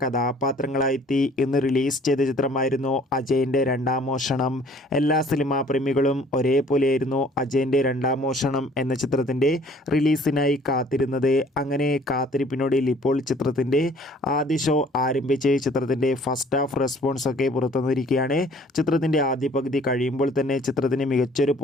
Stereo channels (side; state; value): both; normal; correlation 0.55